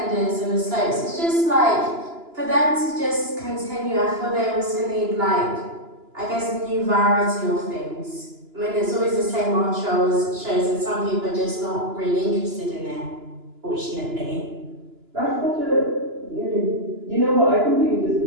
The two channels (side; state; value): left; late; 2.9 ms